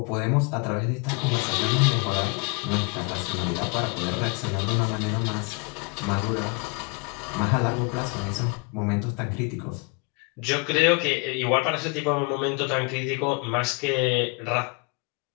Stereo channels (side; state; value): right; quieter; 30.9 dB